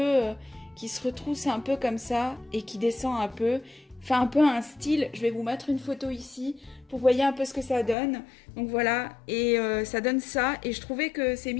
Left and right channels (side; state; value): right; drops out; at 8.0 s